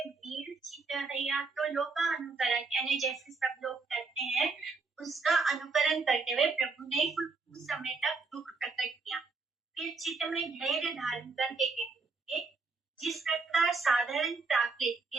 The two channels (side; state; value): left; quieter; 4.2 dB